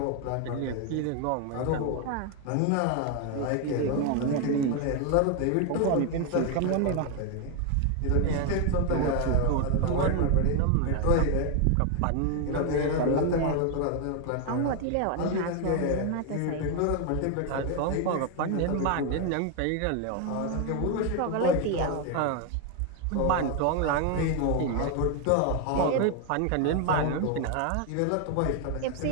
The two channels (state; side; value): different; both; correlation 0.01